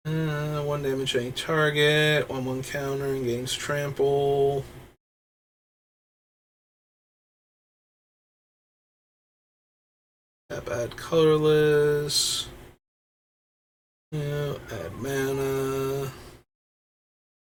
1 damage to any target, 1/1 counter, and gains trample. Add colorless. Yeah, add mana.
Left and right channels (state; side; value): identical; both; correlation 1.00